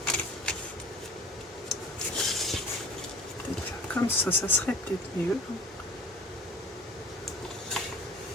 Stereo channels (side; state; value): both; normal; correlation 0.41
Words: Peut-être faire comme ça serait peut-être mieux.